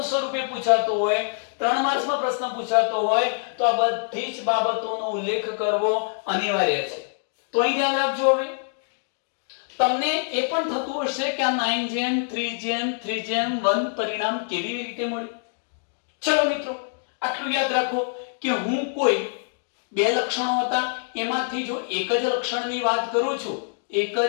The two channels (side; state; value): right; silent; digital silence